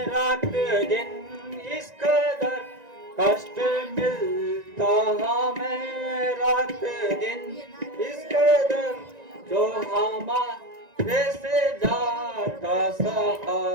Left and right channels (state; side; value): late; left; 1.9 ms